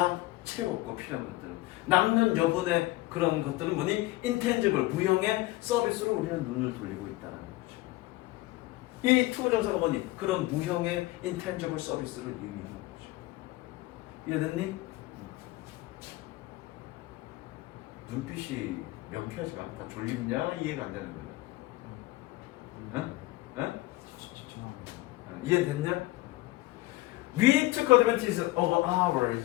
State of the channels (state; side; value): quieter; right; 19.0 dB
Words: 채웠고 필요한 것들은 남는 여분의 그런 것들은 뭐니? intangible 무형의 서비스로 우리는 눈을 돌리고 있다는 거죠. 이 투부정사가 뭐니? 그런 무형의 intangible 서비스를 의미하는 거죠. 이해됐니? 눈빛이 명쾌하지가 않다. 졸립냐? 이해가 안 되는 거야. 응? 응? 이해됐냐? We took advantage of our